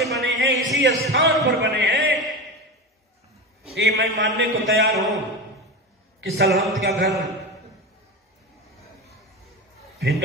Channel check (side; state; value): both; normal; correlation 0.24